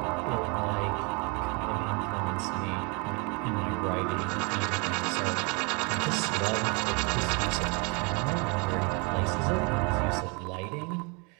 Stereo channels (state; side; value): quieter; left; 31.5 dB